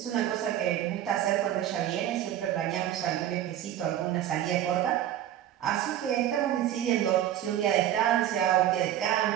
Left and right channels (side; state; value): left; quieter; 11.7 dB